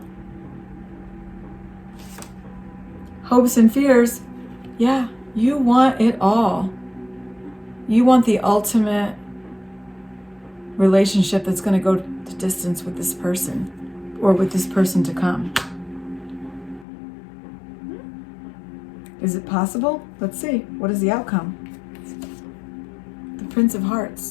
Hopes and fears, yeah, you want it all. You want the ultimate relationship that's going to go the distance with this person, or with this person to come. Is it possible? Let's see. What is the outcome? The Prince of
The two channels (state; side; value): drops out; right; at 16.9 s